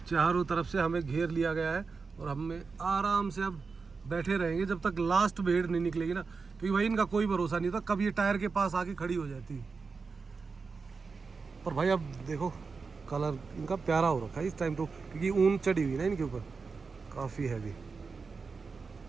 चारों तरफ से हमें घेर लिया गया है। और हमें आराम से अब बैठे रहेंगे जब तक लास्ट भेड़ नहीं निकलेगी ना, क्योंकि भाई इनका कोई भरोसा नहीं था, कब ये टायर के पास आके खड़ी हो जाती। पर भाई अब देखो कलर इनका प्यारा हो रखा है इस टाइम तो, क्योंकि ऊन चढ़ी हुई ना इनके ऊपर काफ़ी हैवी।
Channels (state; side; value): quieter; left; 4.8 dB